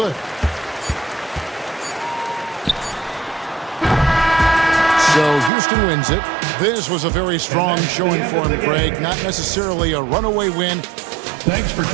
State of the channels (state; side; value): drops out; left; at 5.5 s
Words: So Houston wins it. This was a very strong showing for him, Greg. Not necessarily a runaway win. Thanks for